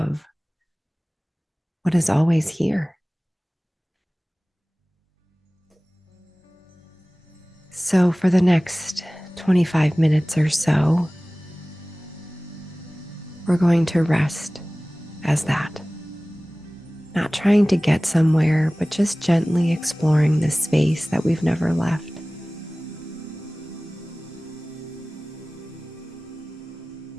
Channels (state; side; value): normal; both; correlation 0.98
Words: what is always here. So, for the next 25 minutes or so, we're going to rest as that. Not trying to get somewhere, but just gently exploring this space that we've never left.